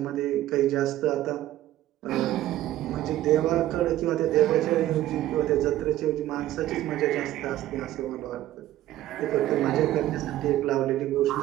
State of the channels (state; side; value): quieter; left; 14.2 dB